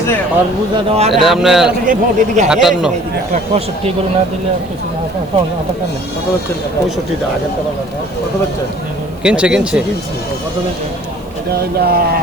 আর বুঝা দাও আর এটা আপনার 58 একটা 65 করে না দিলে আর কিছু না কত হচ্ছে 65 টাকা আগের টাকা কত হচ্ছে কিনছে কত হচ্ছে এটা হইলা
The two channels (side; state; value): right; noise; hiss, 29 dB below the sound